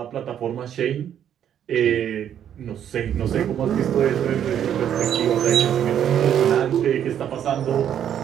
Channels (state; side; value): quieter; left; 9.7 dB